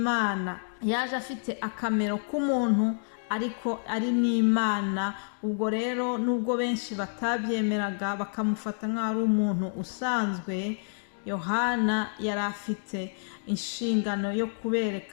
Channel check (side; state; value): right; silent; digital silence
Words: Yaje afite akamero k'umuntu, ariko ari n'Imana. Ubwo rero nubwo benshi batabyemeraga bakamufata nk'aho ari umuntu usanzwe, Yohana yari afite inshingano yo